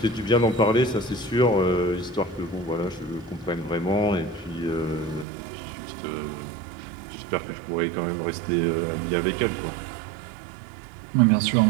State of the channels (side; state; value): left; drops out; at 5.2 s